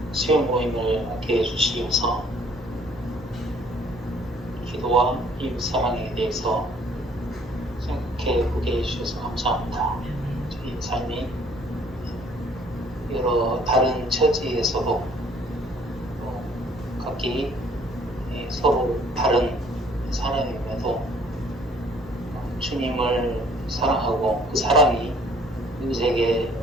수요 모임을 함께 해주시면서 기도와 이웃 사랑에 대해서 생각해 보게 해주셔서 감사합니다. 저희 삶이 여러 다른 처지에서도 각기 서로 다른 사람임에도 주님을 사랑하고 그 사랑이 이웃에게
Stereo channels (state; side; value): normal; both; correlation 0.59